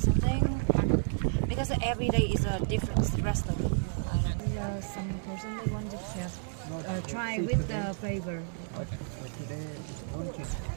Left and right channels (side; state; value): left; silent; digital silence